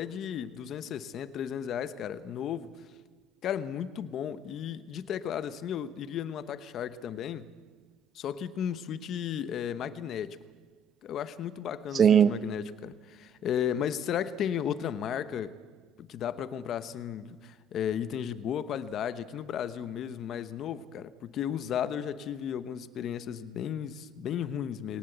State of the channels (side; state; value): both; normal; correlation 0.57